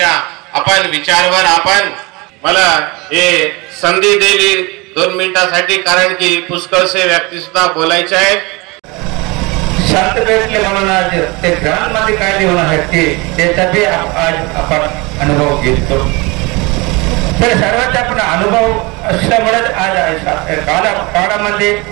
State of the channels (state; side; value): quieter; left; 26.1 dB